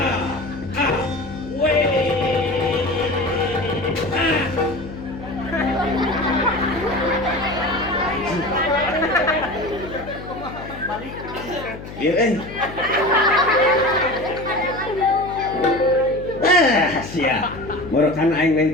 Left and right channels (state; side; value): noise; left; hum, 13 dB below the sound